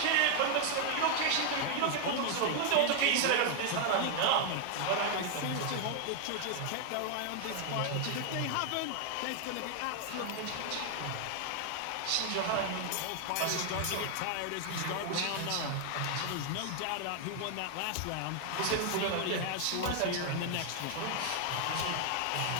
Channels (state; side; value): different; both; correlation 0.00